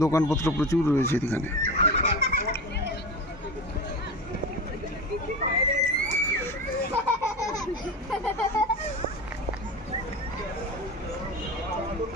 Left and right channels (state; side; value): normal; both; correlation 0.27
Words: দোকানপত্র প্রচুর রয়েছে এখানে।